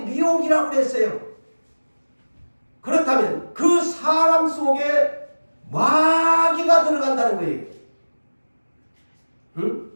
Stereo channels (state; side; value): inverted; both; correlation -1.00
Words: 미혹이라고 그랬어요. 그렇다면 그 사람 속에 마귀가 들어간다는 거예요. 응?